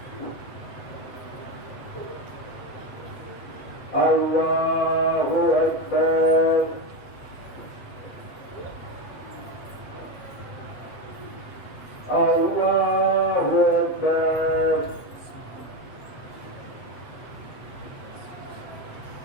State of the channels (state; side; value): late; right; 8.3 ms